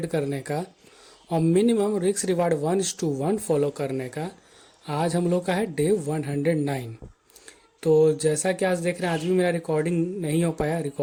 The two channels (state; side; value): identical; both; correlation 1.00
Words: करने का और मिनिमम रिस्क रिवार्ड 1:1 फॉलो करने का आज हम लोग का है डे 109। तो जैसा कि आज देख रहे हैं, आज भी मेरा रिकॉर्डिंग नहीं हो पाया।